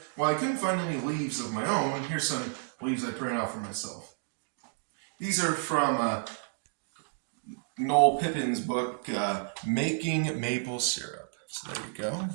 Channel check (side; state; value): left; silent; digital silence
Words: while I couldn't find any leaves of my own, here's some leaves I printed out for myself. These are from Noel Pippin's book, Making Maple Syrup. So there you go.